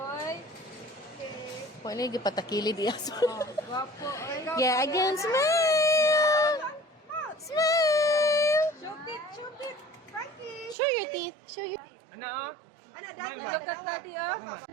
Wala yung gipatakilid iya. Gwapo, oy. Yeah, again, smile. Smile. Shoot it, shoot it. Frankie. Show your teeth. Show your... Ano, oh? Ano, Smile dad? ba? Look at daddy, oh.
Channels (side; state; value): left; drops out; at 10.8 s